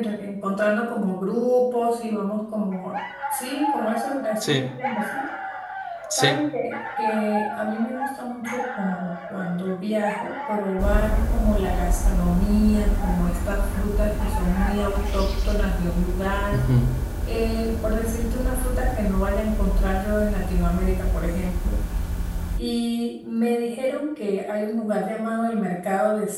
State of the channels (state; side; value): identical; both; correlation 1.00